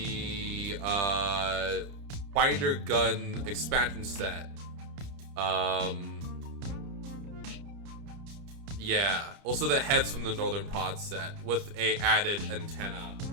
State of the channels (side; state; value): left; late; 30 ms